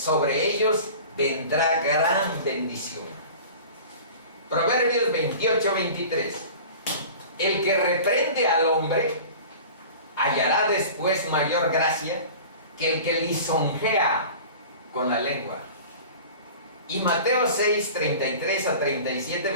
ellos vendrá gran bendición. Proverbios 28, 23. El que reprende al hombre hallará después mayor gracia que el que lisonjea con la lengua. Y Mateo 6, 33 a 37,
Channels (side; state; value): both; inverted; correlation -0.40